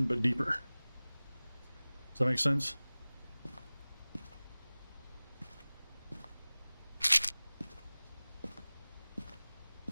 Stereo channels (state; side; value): inverted; both; correlation -0.99